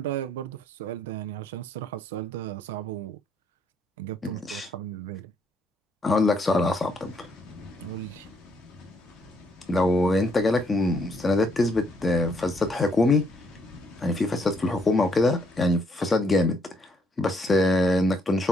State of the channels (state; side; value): normal; both; correlation 0.70